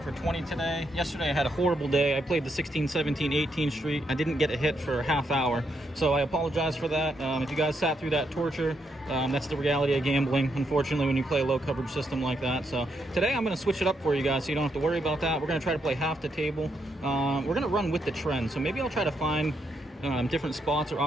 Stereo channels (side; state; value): both; normal; correlation 0.79